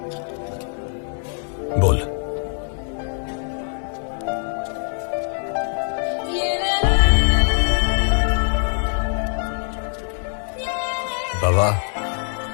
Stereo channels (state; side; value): silent; right; 61 dB below the other